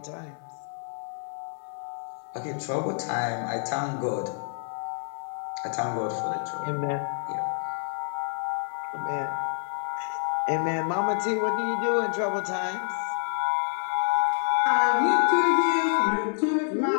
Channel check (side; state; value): right; silent; 60 dB below the other